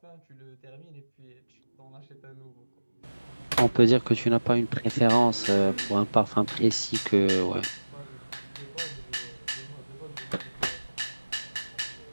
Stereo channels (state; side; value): inverted; both; correlation -1.00